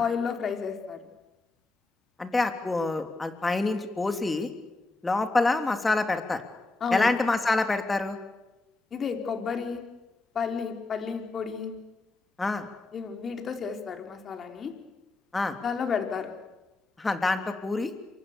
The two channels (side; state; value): right; quieter; 3.3 dB